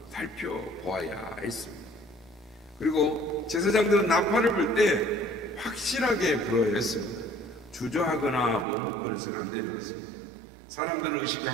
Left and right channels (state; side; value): drops out; left; at 8.7 s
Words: 살펴보아야 했습니다. 그리고 제사장들은 나팔을 불 때 확실하게 불어야 했습니다. 주저하거나 머뭇거려서는 안 되는 것입니다. 사람들을